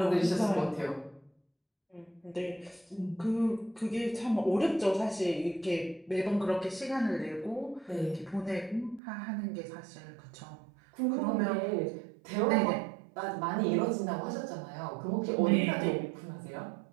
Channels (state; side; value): drops out; left; at 9.0 s